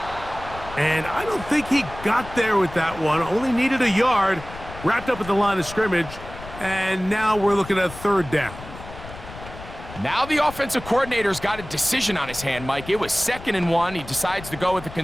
And I don't think he got there with that one. Only needed a yard. Wrapped up at the line of scrimmage. And now we're looking at 3rd down. Now the offensive coordinator's got a decision on his hand, Mike. It was 2nd and 1. He decides to go with a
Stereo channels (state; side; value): noise; left; rumble, 14 dB below the sound